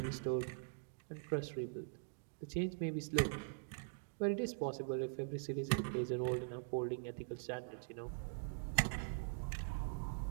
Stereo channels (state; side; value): silent; left; digital silence